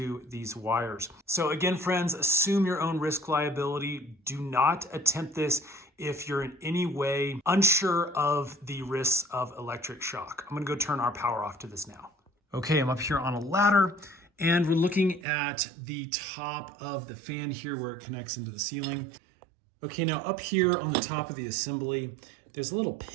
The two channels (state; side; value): drops out; left; at 15.2 s